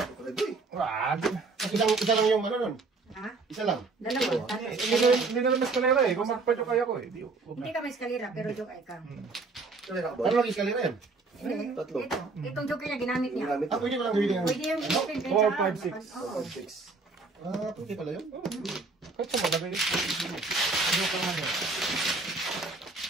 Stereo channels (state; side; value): quieter; left; 3.9 dB